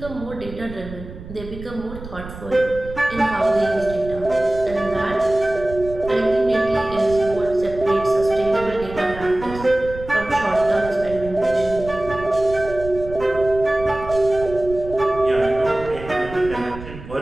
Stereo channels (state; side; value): noise; right; rumble, 13 dB below the sound